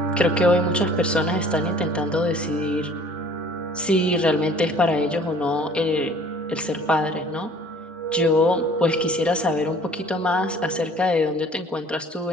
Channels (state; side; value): normal; both; correlation 0.52